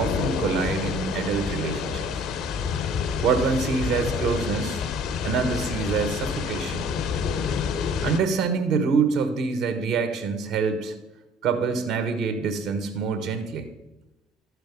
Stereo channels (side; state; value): both; normal; correlation 0.52